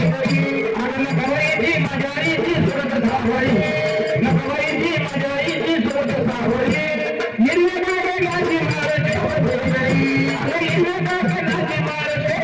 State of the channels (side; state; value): both; identical; correlation 1.00